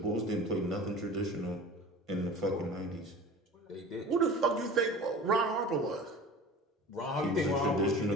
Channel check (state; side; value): normal; both; correlation 0.39